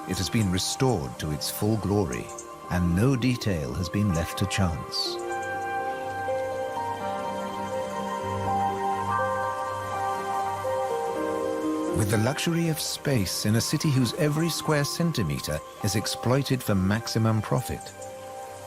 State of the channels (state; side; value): identical; both; correlation 1.00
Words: it has been restored to its full glory, and no detail has been left to chance. With the luxury of space in a city whose every square centimeter is exploited for maximum profit,